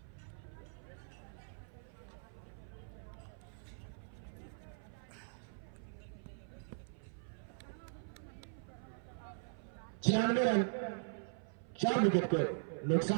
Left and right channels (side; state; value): left; silent; 50 dB below the other